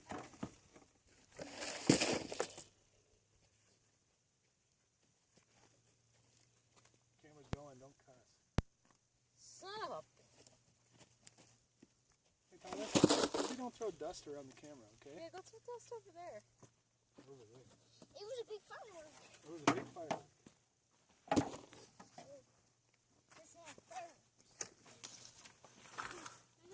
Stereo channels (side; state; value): both; identical; correlation 1.00